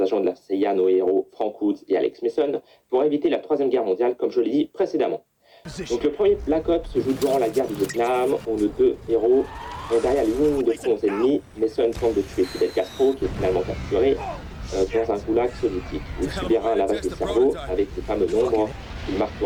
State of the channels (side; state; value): both; identical; correlation 1.00